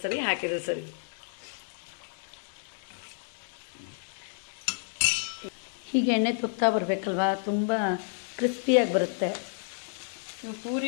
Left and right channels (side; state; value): right; silent; 58 dB below the other